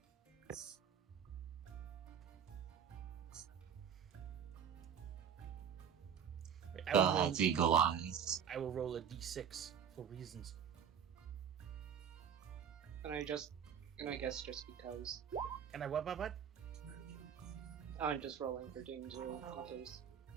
That's eagle eyes. I will roll a d6 for reasons. And I guess just because. And I what? I'm just rolling for danger in case.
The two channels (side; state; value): left; quieter; 7.9 dB